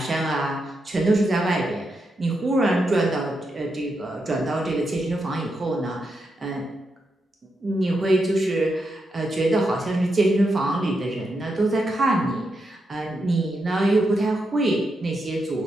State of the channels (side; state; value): both; normal; correlation 0.84